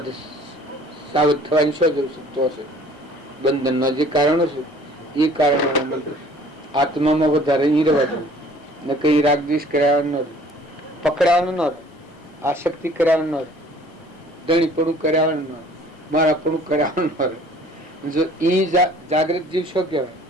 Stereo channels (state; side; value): normal; both; correlation 0.53